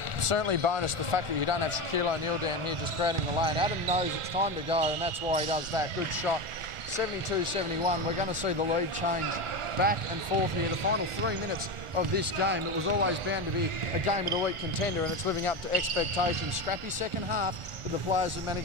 Certainly bonus the fact that you don't have Shaquille O'Neal down here just crowding the lane. Adam knows it's time to go, and that's why he does that. Good shot. 72-71. We're going to see the lead change back and forth here. The final 3 minutes of this game, it was always bound to be a game of the week contender, and it's living up to expectations. Scrappy second half, but the players have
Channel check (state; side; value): late; left; 1.4 ms